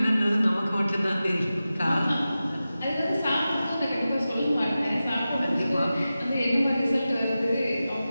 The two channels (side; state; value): both; inverted; correlation -0.94